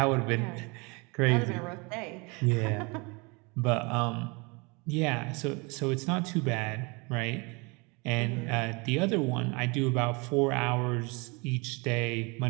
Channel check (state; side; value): quieter; left; 28.8 dB